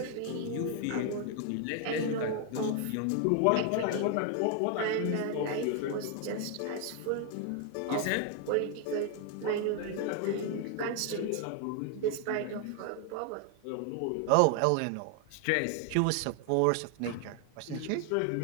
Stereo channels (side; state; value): both; different; correlation 0.00